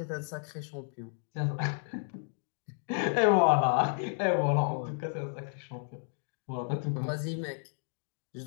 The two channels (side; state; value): right; silent; 56 dB below the other